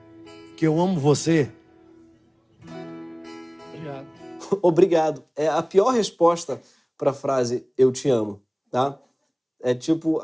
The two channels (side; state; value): both; identical; correlation 1.00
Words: amo você? Obrigado. Obrigado. É a pior resposta para a frase "eu te amo", tá? É tipo,